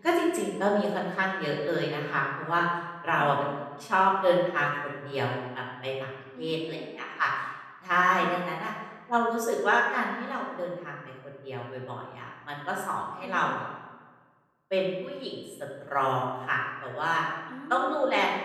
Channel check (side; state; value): both; identical; correlation 1.00